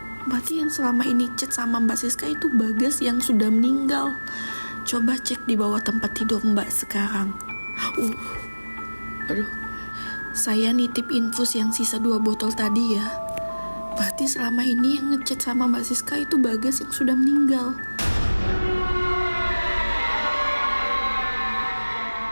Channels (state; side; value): inverted; both; correlation -1.00